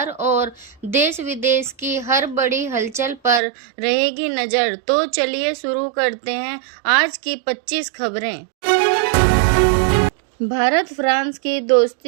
और देश विदेश की हर बड़ी हलचल पर रहेगी नज़र। तो चलिए शुरू करते हैं आज की 25 खबरें। भारत फ्रांस की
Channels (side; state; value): left; drops out; at 3.4 s